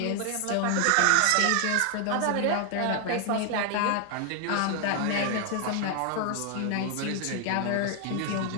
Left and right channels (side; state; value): both; different; correlation 0.00